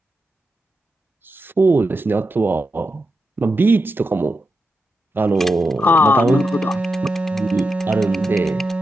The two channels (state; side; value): normal; both; correlation 0.88